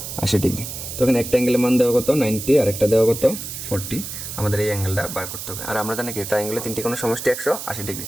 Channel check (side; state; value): right; noise; hiss, 8 dB below the sound